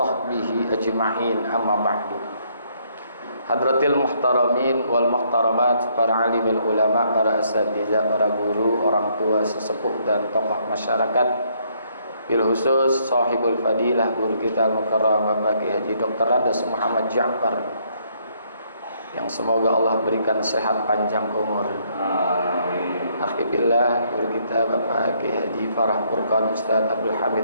ajma'in, amma ba'du. Hadratil muhtaramin wal muhtaramat, para alimil ulama, para asatidzah, para guru, orang tua, sesepuh dan tokoh masyarakat, bil khusus sahibul fadilah guru kita al-mukarram Bapak Kiai Haji Dr. Radas Muhammad Ja'far, yang semoga Allah berikan sehat panjang umur. Amin. Alhamdulillah, guru kita Bapak Kiai Haji Farah Furqan, Ustaz Abdul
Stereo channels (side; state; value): both; inverted; correlation -0.69